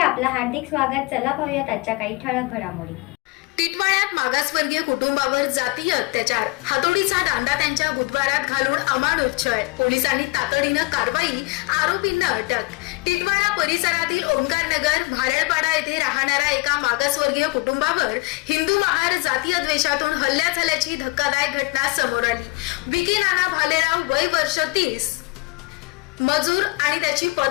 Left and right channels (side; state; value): right; quieter; 24.9 dB